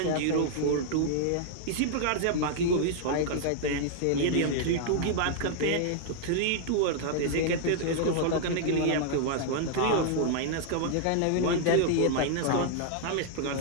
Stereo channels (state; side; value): different; both; correlation -0.01